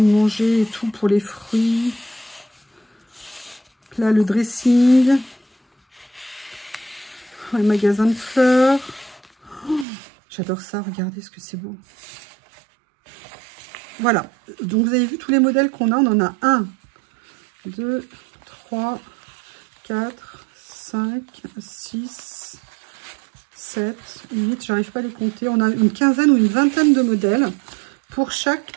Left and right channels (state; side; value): drops out; left; at 9.9 s